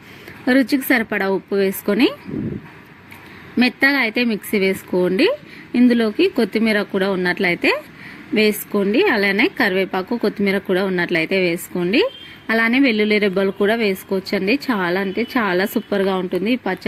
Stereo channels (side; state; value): both; identical; correlation 1.00